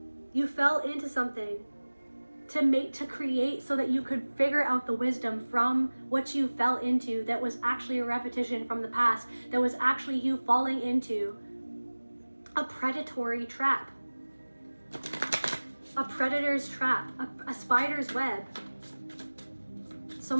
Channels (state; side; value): inverted; both; correlation -1.00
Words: You fell into something to create so that you could figure out the wisdom from what you fell into that was actually a repetition from the past, that was actually you falling into a predatory trap, a predator's trap, a spider's web.